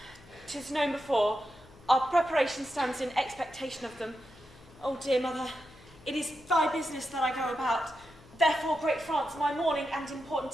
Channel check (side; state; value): left; noise; hum, 23 dB below the sound